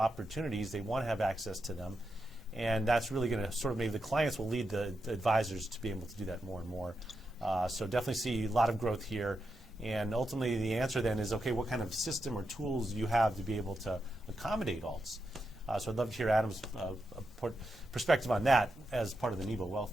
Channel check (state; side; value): normal; both; correlation 0.86